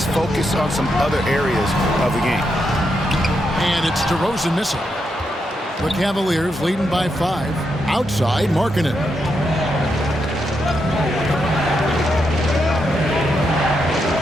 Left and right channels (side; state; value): both; normal; correlation 0.82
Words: focus on some other areas of the game. And it's DeRozan missing. The Cavaliers leading by 5. Outside, Markkanen.